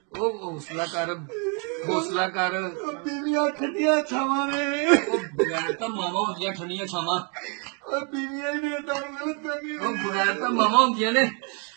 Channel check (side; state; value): left; quieter; 37.2 dB